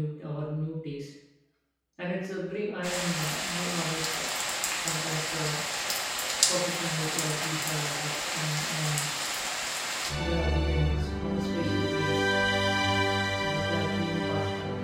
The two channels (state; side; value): identical; both; correlation 1.00